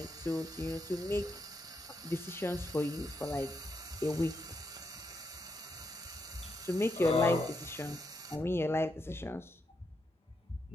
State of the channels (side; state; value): both; normal; correlation 0.82